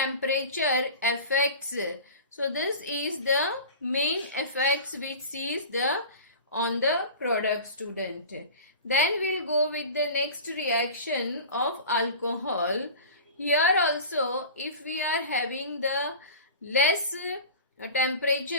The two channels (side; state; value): both; inverted; correlation -0.36